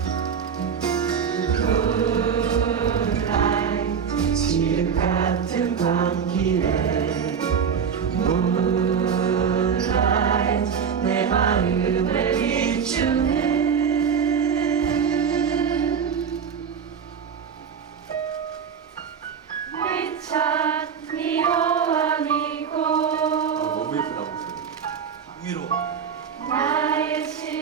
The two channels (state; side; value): quieter; left; 7.0 dB